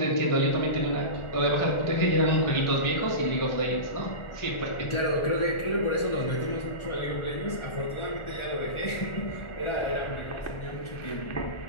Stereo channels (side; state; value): right; late; 1.4 ms